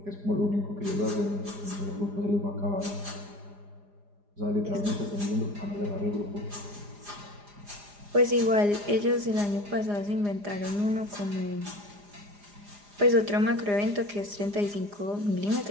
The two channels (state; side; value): late; left; 4.9 ms